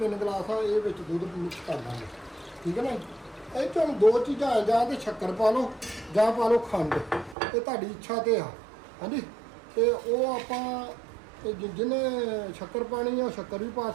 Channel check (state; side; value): drops out; left; at 7.4 s